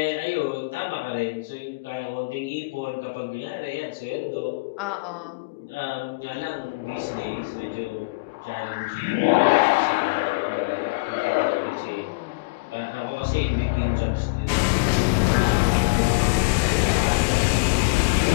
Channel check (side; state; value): right; quieter; 28.3 dB